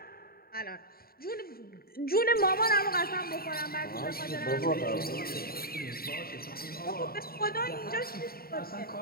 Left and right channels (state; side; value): late; right; 0.43 ms